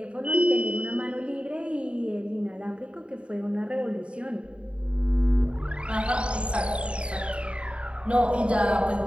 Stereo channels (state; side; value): late; left; 0.057 ms